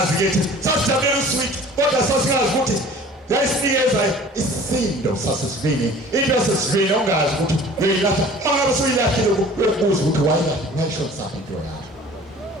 kethi sasijabulela uswidi kodwa sasingazi ukuthi yayisinikeza isindo sasesivini into yasesivini ongazi ukuthi uyilahla mangabe suyilahlile ukubuza ukuthi wayishona saphi into yakho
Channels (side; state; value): both; normal; correlation 0.46